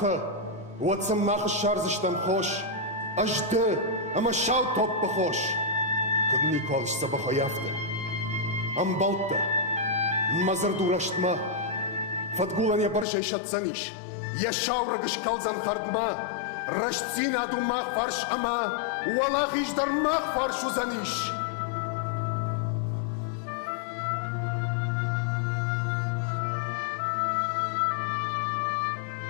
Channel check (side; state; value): right; drops out; at 13.1 s